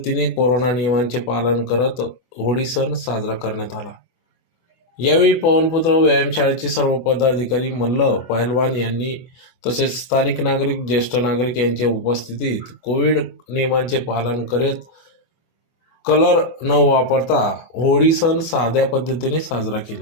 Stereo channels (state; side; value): late; right; 24 ms